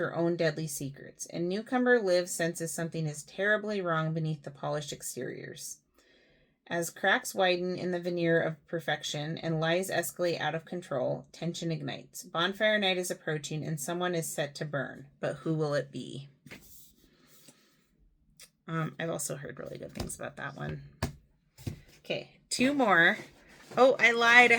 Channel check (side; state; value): both; identical; correlation 1.00